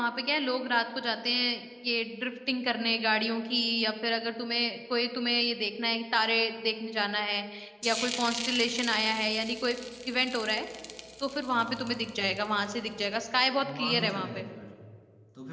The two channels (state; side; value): identical; both; correlation 1.00